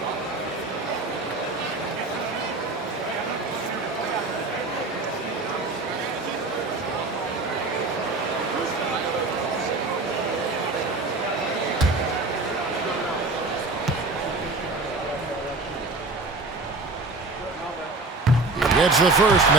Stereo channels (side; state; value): left; quieter; 3.3 dB